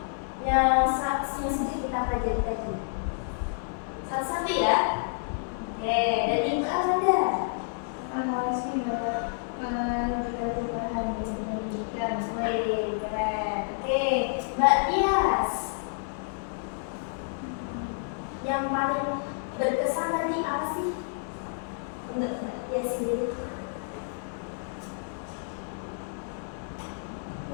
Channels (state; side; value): silent; right; digital silence